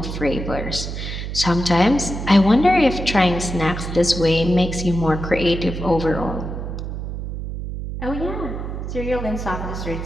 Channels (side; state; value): right; noise; hum, 6 dB below the sound